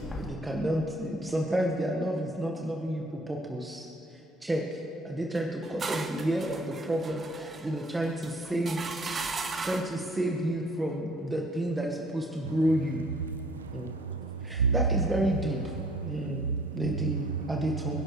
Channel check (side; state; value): both; normal; correlation 0.57